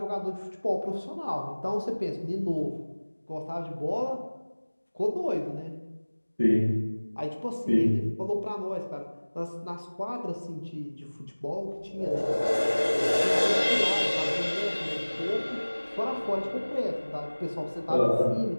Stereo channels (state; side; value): inverted; both; correlation -1.00